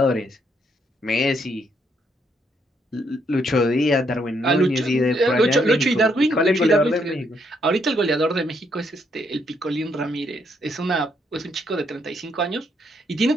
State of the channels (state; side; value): normal; both; correlation 0.74